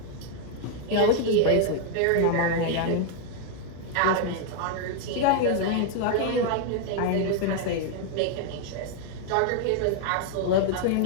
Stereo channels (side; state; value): both; different; correlation 0.00